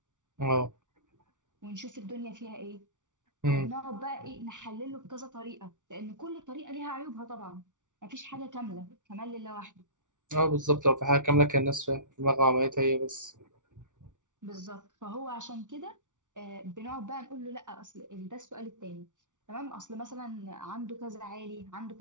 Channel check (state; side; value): late; left; 0.87 ms